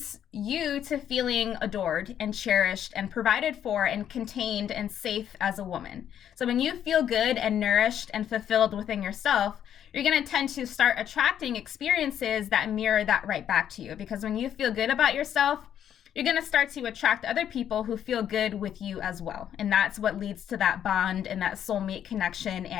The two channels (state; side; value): quieter; right; 9.8 dB